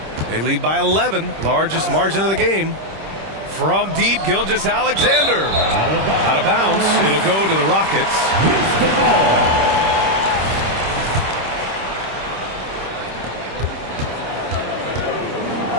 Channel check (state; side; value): late; left; 26 ms